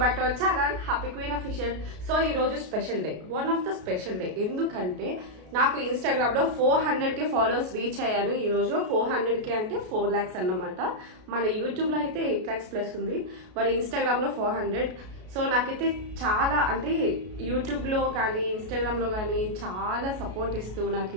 back to our channel Happy Queen Official. So ee roju special day, one of the special day endukante నాకు Instagram లో 400k followers reach అయ్యాను. ఈ రోజు 400k అంటే 4 lakhs అన్నమాట. మన YouTube లో అయితే 8 lakhs ప్లస్ ఉంది, మరి ఇన్‌స్టాగ్రామ్ లో 400. సో నాకైతే చాలా అంటే యూట్యూబ్ లో కానీ ఇన్‌స్టాగ్రామ్ లో కానీ చాలా సపోర్ట్ ఇస్తూ నాకు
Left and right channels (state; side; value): late; left; 33 ms